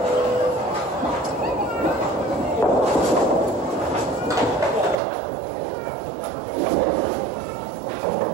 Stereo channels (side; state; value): left; drops out; at 5.0 s